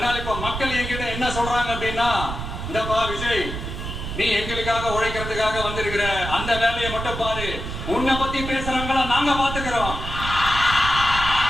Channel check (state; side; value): noise; right; rumble, 6 dB below the sound